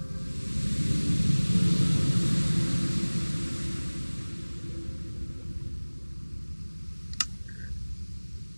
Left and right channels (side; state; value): both; inverted; correlation -1.00